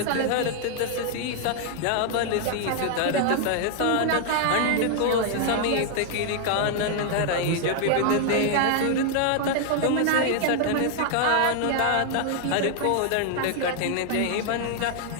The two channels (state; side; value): different; both; correlation 0.00